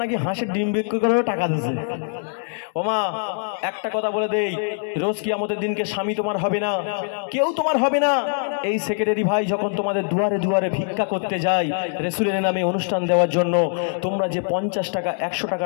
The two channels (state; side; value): silent; right; digital silence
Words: নাকি হাঁসের ডিম বিক্রি করে টাকা দিচ্ছে। ও মা একটা কথা বলে দেই, রোজ কিয়ামতের দিনকে স্বামী তোমার হবে না, কেউ তোমার হবে না। এই সেক্রেটারি ভাই যখন তোমাদের দুয়ারে দুয়ারে ভিক্ষা করতে যায় রাসূলের নামে অনুষ্ঠান দেওয়ার জন্য, তোমরা যে 50 টাকা 100